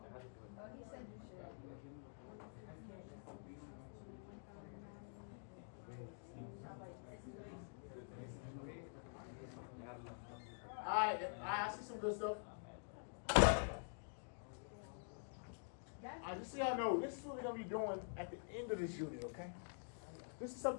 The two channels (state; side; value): silent; right; digital silence